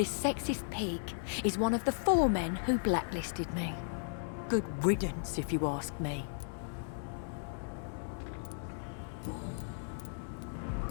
sexist pig is one of the 4 men who blacklisted me. Good riddance, if you ask me.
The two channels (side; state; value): right; silent; digital silence